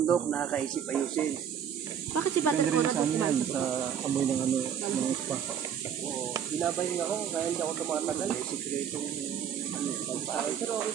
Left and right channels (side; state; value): left; quieter; 8.5 dB